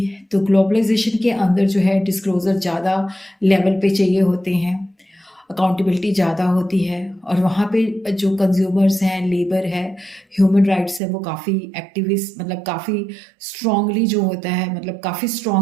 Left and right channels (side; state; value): left; drops out; at 11.0 s